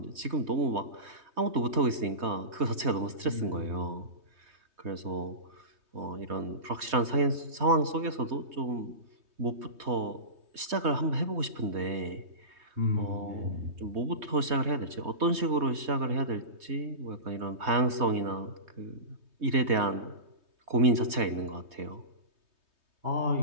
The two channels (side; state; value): left; late; 3.2 ms